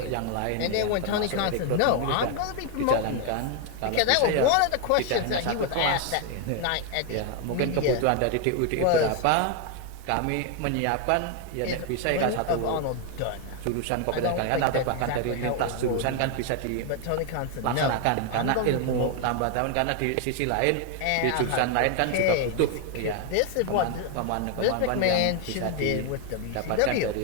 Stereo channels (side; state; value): both; different; correlation 0.01